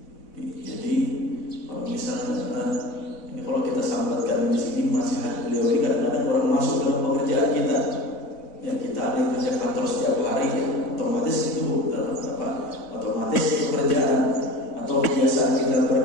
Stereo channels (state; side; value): late; right; 4.0 ms